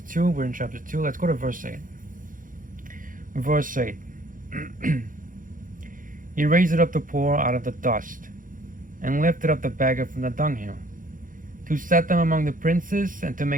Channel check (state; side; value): late; left; 0.39 ms